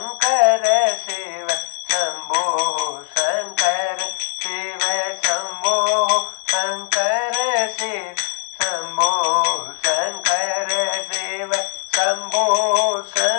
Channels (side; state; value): right; silent; 60 dB below the other